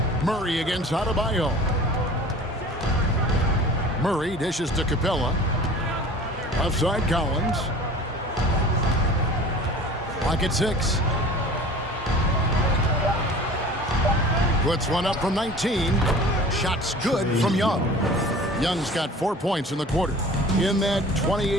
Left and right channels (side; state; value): both; normal; correlation 0.43